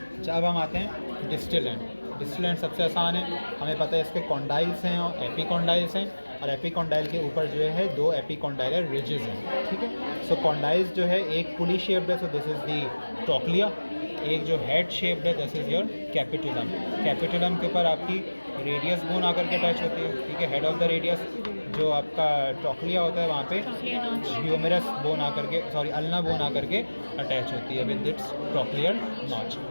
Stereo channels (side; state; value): both; inverted; correlation -1.00